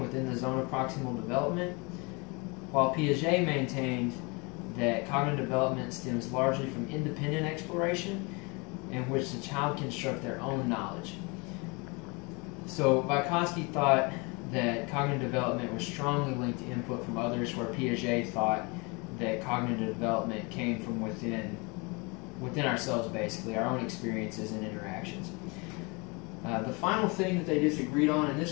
the zone of proximal development, while Piaget maintained that cognitive development stems largely from independent exploration, in which the child can construct their own knowledge. So Vygotsky thought that cognitive development was strongly linked to input from others, where Piaget thought that cognitive development came from within ourselves, basically, our own experiences and interactions. The final thing that they disagreed on, and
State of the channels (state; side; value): quieter; right; 29.0 dB